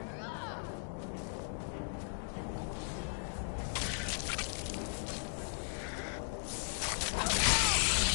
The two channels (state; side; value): silent; right; digital silence